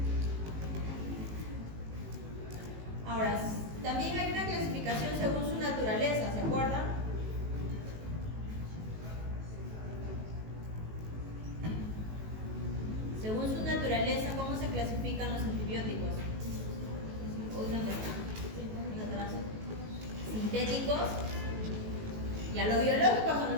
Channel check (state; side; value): late; left; 18 ms